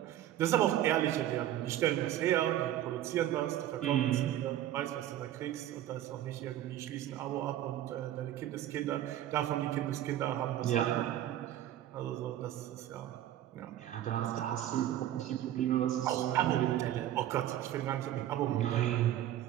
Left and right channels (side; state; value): left; quieter; 12.5 dB